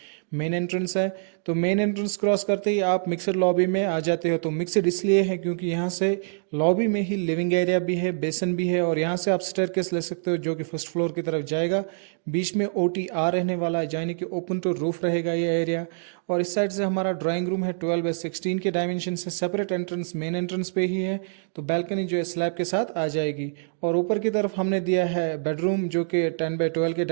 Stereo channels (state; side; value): silent; left; digital silence